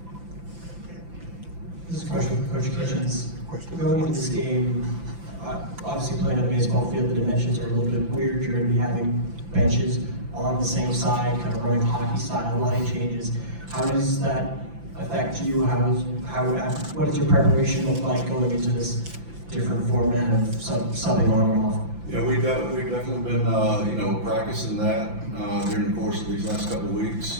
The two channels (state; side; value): late; left; 5.9 ms